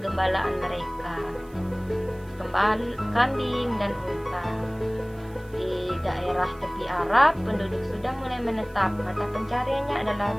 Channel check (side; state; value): right; noise; hiss, 27 dB below the sound